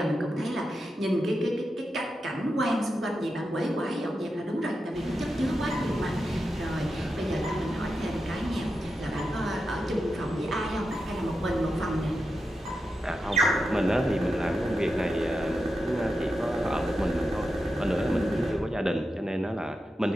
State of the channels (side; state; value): both; normal; correlation 0.89